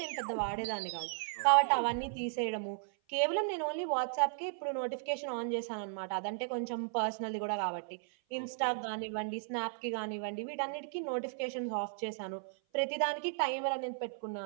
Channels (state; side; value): silent; left; 54 dB below the other